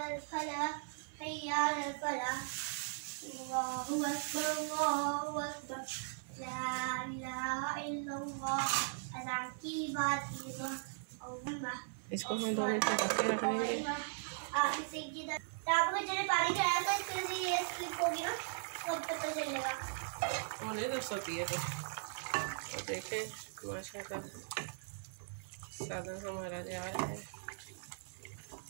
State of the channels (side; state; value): left; silent; 52 dB below the other